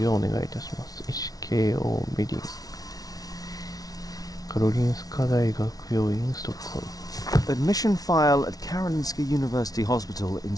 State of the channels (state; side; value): late; right; 0.18 ms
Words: ようお願いいたします。SKO メディンカロリンスカ大学病院ストックホルム Admission file at Karolinska University Hospital in